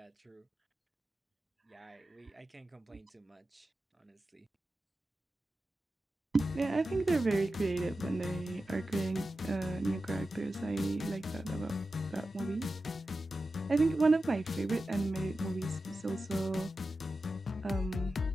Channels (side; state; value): both; normal; correlation 0.92